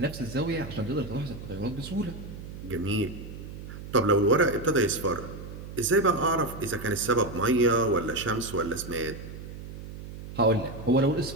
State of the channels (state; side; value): noise; right; hum, 11 dB below the sound